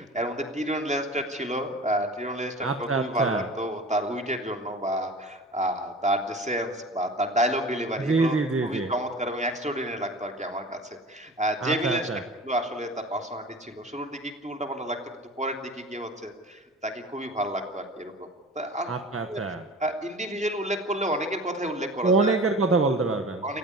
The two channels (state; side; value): normal; both; correlation 0.39